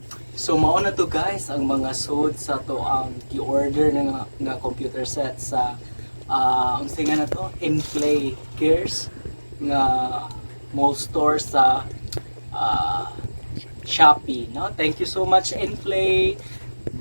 so mao na to guys ang mga sud sa to ang gi-order nga computer set sa ang singa na to Inplay Gears nga mall store sa Shopee, no? Thank you so much Inplay.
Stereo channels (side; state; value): both; inverted; correlation -1.00